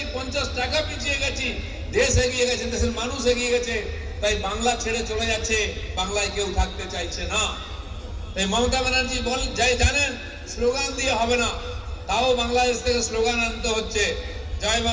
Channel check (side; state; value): both; identical; correlation 1.00